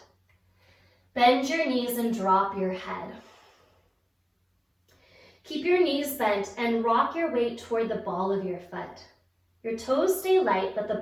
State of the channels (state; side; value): identical; both; correlation 1.00